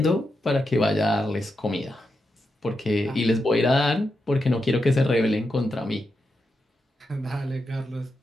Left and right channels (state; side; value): normal; both; correlation 0.86